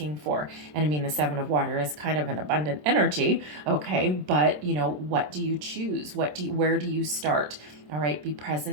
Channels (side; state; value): left; late; 27 ms